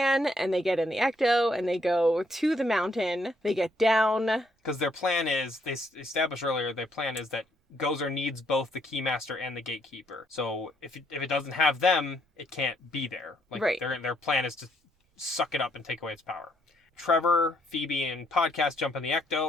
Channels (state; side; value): normal; both; correlation 0.71